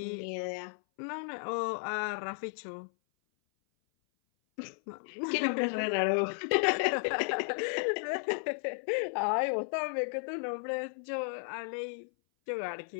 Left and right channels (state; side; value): silent; right; 55 dB below the other